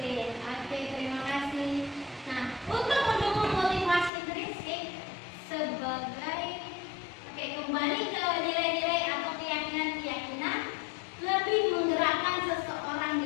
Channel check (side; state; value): right; drops out; at 4.1 s